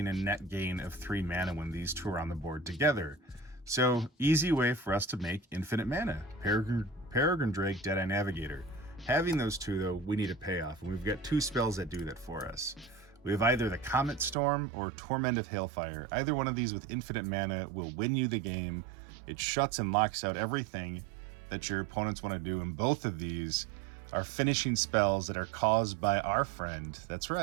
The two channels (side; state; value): left; drops out; at 14.4 s